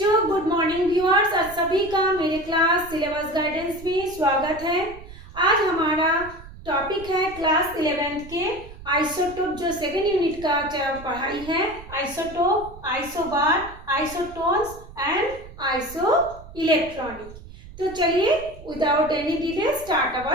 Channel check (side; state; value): right; noise; rumble, 17 dB below the sound